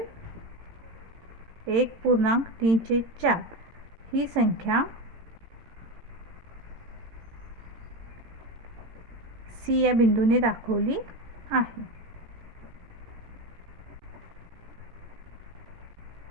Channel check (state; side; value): late; left; 18 ms